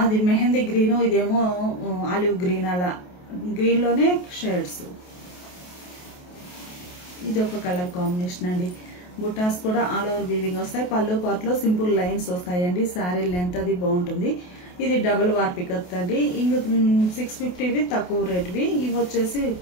మెహందీ గ్రీను, ఇదేమో ఆలివ్ గ్రీన్, అలా గ్రీన్లోనే షేడ్స్. ఇది ఒక కలర్ కాంబినేషన్ అండి. బుటాస్ కూడా ఆల్ ఓవర్ వీవింగ్ వస్తాయి. పళ్ళు పార్ట్లో సింపుల్ లైన్స్ వస్తాయండి. శారీ లెంత్ అది బాగుంటుంది. ఇది డబుల్ వార్పికత్ అండి. ఇంక 650వి తక్కువ రేట్వి, ఇవి వచ్చేసి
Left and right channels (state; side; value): late; right; 28 ms